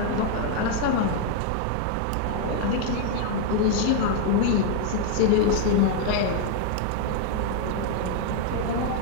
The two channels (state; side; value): different; both; correlation 0.00